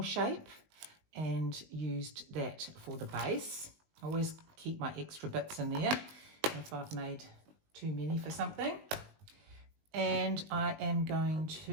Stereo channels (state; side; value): late; left; 19 ms